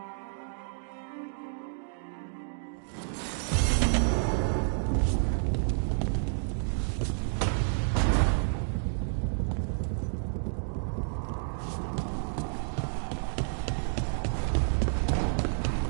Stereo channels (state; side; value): silent; left; digital silence